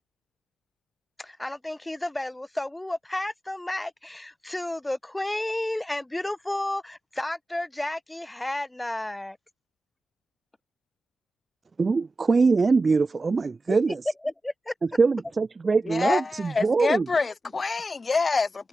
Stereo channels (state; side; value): normal; both; correlation 0.93